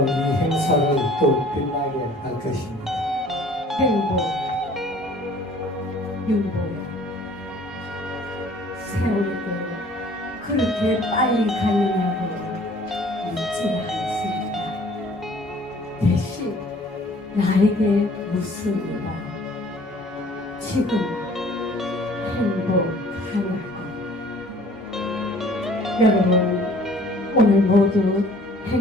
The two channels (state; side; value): normal; both; correlation 0.53